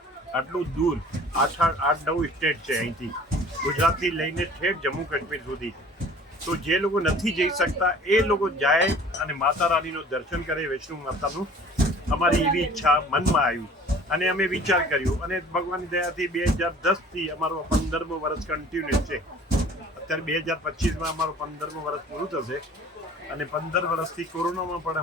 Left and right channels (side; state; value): both; normal; correlation 0.49